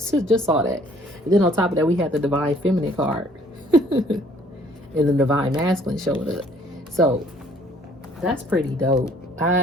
And then on top of that, we had the divine feminine card. And the divine masculine showed up. So that's pretty dope.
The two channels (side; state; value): both; normal; correlation 0.59